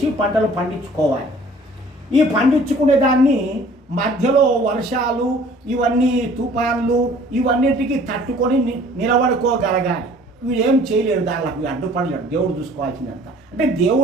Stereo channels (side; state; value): both; normal; correlation 0.52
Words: పంటలు పండించుకోవాలి. ఈ పండించుకునే దాన్ని మధ్యలో వర్షాలు, ఇవన్నీ తుఫాన్లు, ఇవన్నిటికీ తట్టుకొని నిలబడుకోగలగాలి. వీడేం చేయలేడు, దానికి అడ్డుపడలేడు. దేవుడు చూసుకోవాల్సిందంత. అంటే